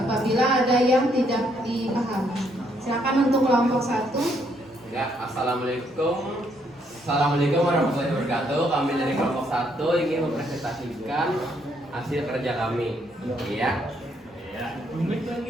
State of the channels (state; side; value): normal; both; correlation 0.72